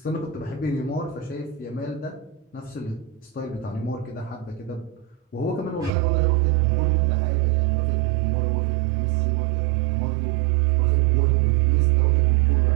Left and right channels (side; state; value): left; drops out; at 5.9 s